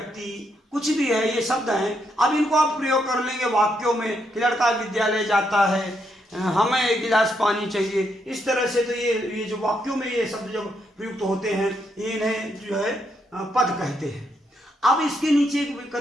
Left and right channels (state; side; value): normal; both; correlation 0.78